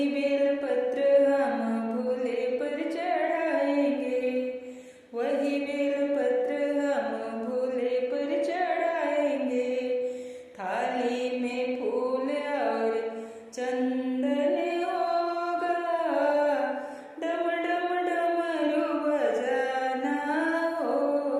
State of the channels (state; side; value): identical; both; correlation 1.00